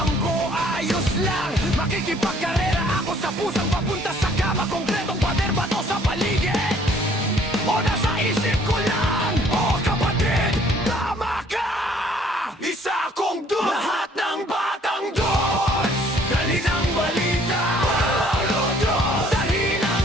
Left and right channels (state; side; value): normal; both; correlation 0.60